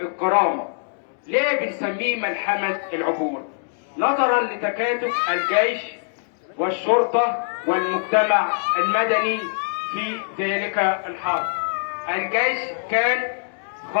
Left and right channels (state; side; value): silent; right; digital silence